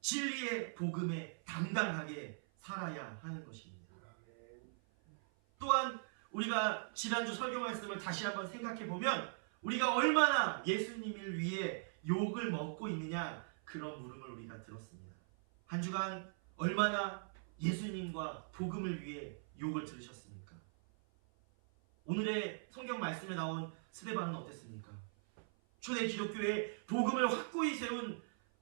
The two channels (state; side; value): silent; left; 51 dB below the other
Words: 진리의 복음에 당당하게 살아야 하는 것입니다. 또한 우리가 지난주 설교 말씀을 다시 한번 생각해 보면 우리가 얼마나 예수님을 위해 욕을 먹고 있느냐, 그런 물음을 우리가 들었습니다. 한 주간 얼마나 예수님과 복음을 위해 욕을 들으셨습니까? 오늘의 성경 말씀에 나온 스데반은 어땠습니까? 초대 기독교의 복음을 확고히 세운